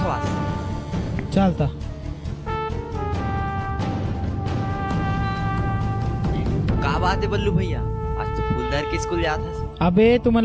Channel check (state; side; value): identical; both; correlation 1.00